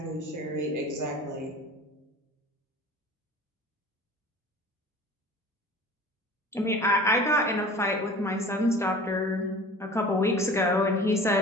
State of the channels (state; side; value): normal; both; correlation 0.41